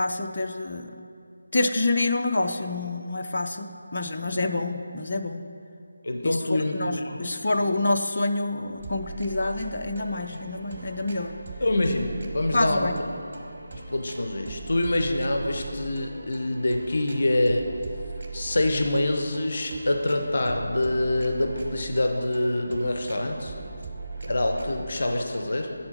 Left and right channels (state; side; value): inverted; both; correlation -0.92